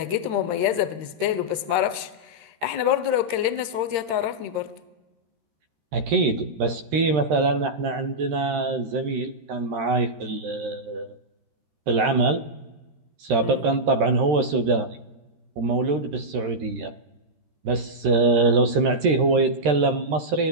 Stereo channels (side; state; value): left; late; 13 ms